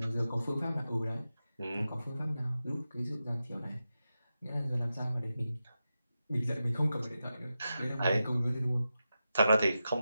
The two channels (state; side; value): inverted; both; correlation -0.91